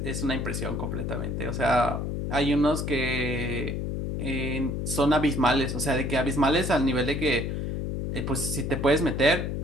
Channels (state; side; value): noise; left; hum, 2 dB below the sound